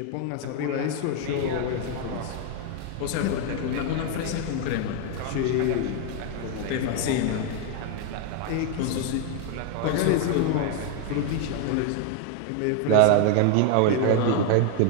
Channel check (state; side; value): different; both; correlation 0.01